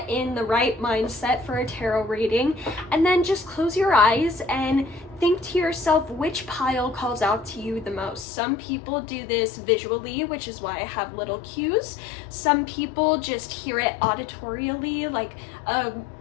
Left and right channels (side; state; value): right; drops out; at 8.2 s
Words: in the right mindset for a tarot reading, and then just close your eyes and think to yourself which pile calls out to you the most. Some people do this visually, which is why I have little cues. Some people just hear it auditorially, like a